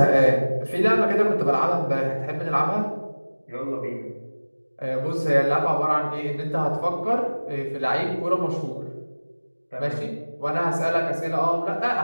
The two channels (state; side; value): inverted; both; correlation -1.00